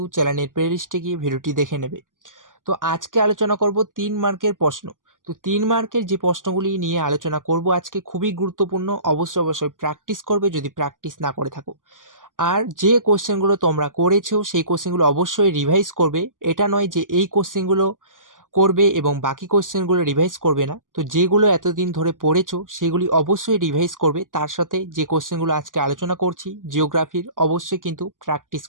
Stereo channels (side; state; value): left; late; 0.88 ms